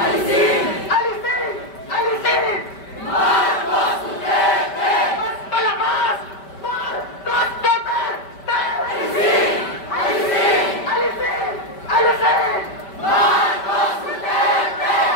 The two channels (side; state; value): right; late; 5.1 ms